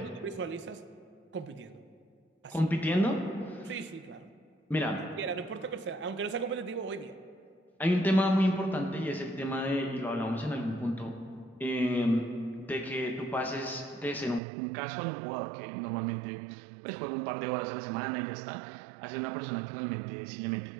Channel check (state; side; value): drops out; left; at 14.4 s